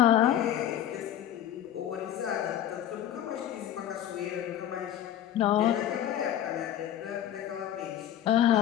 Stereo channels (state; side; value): quieter; right; 11.3 dB